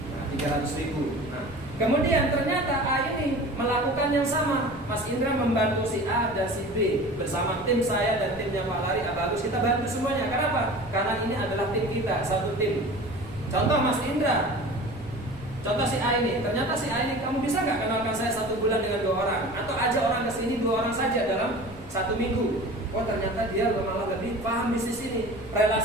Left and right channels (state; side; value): noise; left; rumble, 17 dB below the sound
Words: Nah, 300.000. Nah, kemudian ternyata A ini melakukan yang sama. Mas Indra membantu si A dan si B bersama tim saya dan timnya Pak Lari, Bagus. Kita bantu semuanya. Kenapa? Karena ini adalah tim kita, satu tim. Contoh Mas Indra. Contoh si A ini, ternyata si A ini, kamu bisa nggak kenalkan saya 1 bulan dengan 2 orang? Atau ajak orang ke sini 2 orang saja dalam 1 minggu. Oh ternyata dia malah lebih paham bisnis ini,